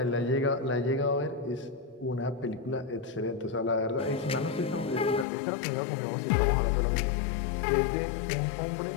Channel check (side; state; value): right; drops out; at 5.2 s